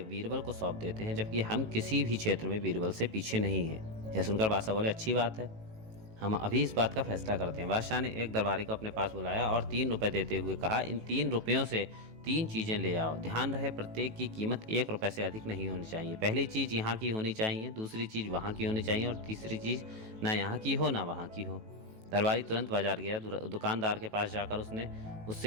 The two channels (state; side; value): late; left; 18 ms